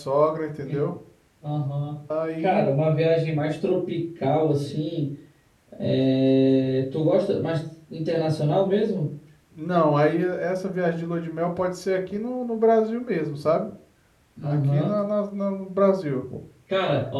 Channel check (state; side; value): identical; both; correlation 1.00